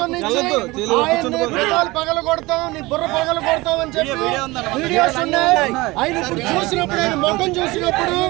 పగల కొడతాం, నీ బుర్ర పగల కొడతాం అని చెప్పి వీడియోస్ ఉన్నాయి. ఆయన ఇప్పుడు చూసినప్పుడు, ఆయన ముఖం చూసినప్పుడు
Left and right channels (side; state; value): left; quieter; 21.5 dB